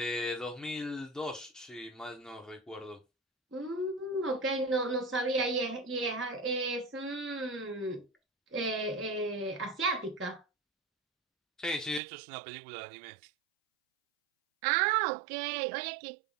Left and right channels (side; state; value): left; drops out; at 12.0 s